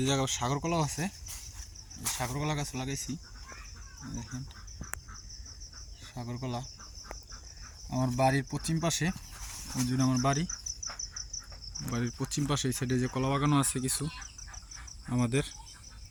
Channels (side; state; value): both; identical; correlation 1.00